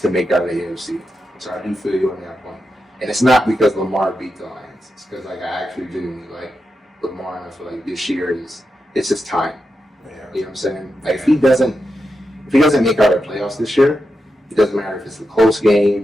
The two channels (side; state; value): both; normal; correlation 0.88